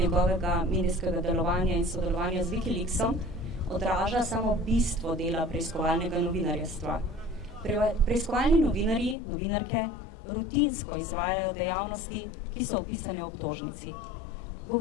medijskega delovanja in sodelovanja z Wikileaksom, odraža samo bistvo dela preiskovalnega novinarjestva. Preiskovalni novinarji, novinarke, rutinsko izvajajo dejavnosti, ki so opisane v obtožnici.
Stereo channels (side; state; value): right; drops out; at 9.2 s